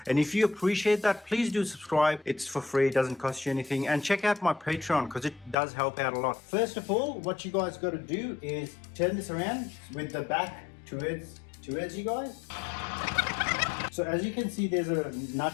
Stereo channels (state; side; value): drops out; right; at 5.6 s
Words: And if you appreciate that, please do subscribe. It's for free, it doesn't cost you anything. And check out my Patreon because it does help out a lot. First of all, what you guys got to do is turn this around with the back towards you guys. So as you can see, there's a nut